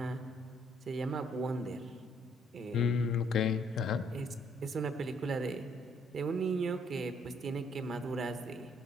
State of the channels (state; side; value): normal; both; correlation 0.66